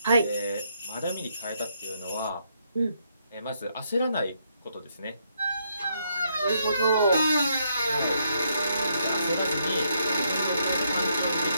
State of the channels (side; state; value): both; inverted; correlation -0.75